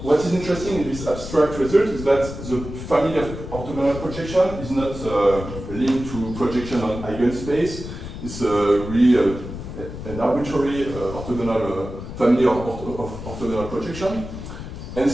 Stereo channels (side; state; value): left; noise; rumble, 10 dB below the sound